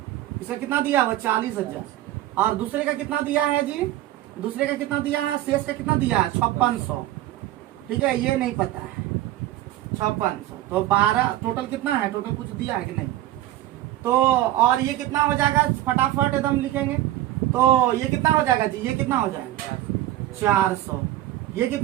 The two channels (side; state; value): left; quieter; 14.4 dB